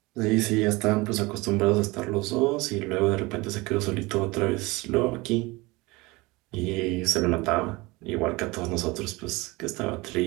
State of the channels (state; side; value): quieter; left; 23.1 dB